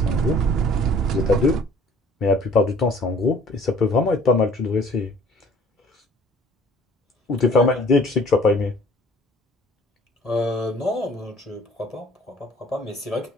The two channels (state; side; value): normal; both; correlation 0.53